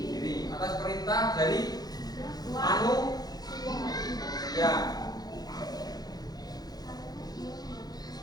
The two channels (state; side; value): late; right; 0.19 ms